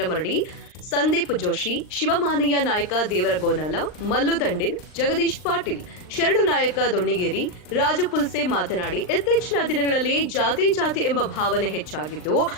ಸಂದೀಪ್ ಜೋಶಿ, ಶಿವಮಾನಯ್ಯ ನಾಯಕ ದೇವರಗೋನಾಲ, ಮಲ್ಲು ದಂಡಿನ್, ಜಗದೀಶ್ ಪಾಟೀಲ್, ಶರಣು ನಾಯಕ ದೊಣ್ಣಿಗೇರಿ, ರಾಜು ಪುಲ್ಸೆ ಮಾತನಾಡಿ, ಇತ್ತೀಚಿನ ದಿನಗಳಲ್ಲಿ ಜಾತಿ ಎಂಬ ಭಾವನೆ ಹೆಚ್ಚಾಗಿದ್ದು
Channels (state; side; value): late; right; 39 ms